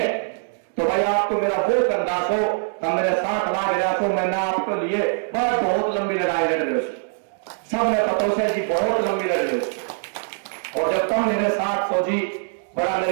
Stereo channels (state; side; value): silent; left; digital silence